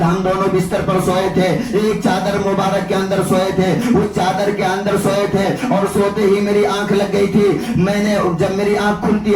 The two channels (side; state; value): both; identical; correlation 1.00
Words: ہم دونوں بستر پر سوئے تھے, ایک چادر مبارک کے اندر سوئے تھے, اس چادر کے اندر سوئے تھے اور سوتے ہی میری آنکھ لگ گئی تھی. میں نے جب میری آنکھ کھلتی